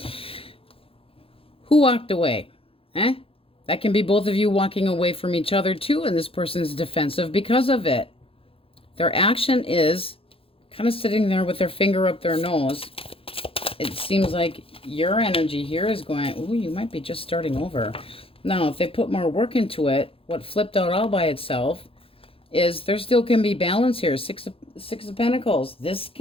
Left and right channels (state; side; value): late; right; 0.27 ms